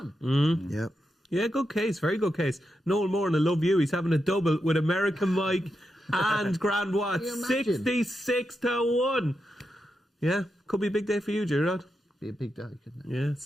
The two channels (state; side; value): normal; both; correlation 0.86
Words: Yep. Yeah, good case, very good case. Noel Moore, and I love you. He's having a double with American Mike and Grand Watts. 66-1. Yeah, could be a big day for you, Gerard. Be a big day, couldn't it? Yeah,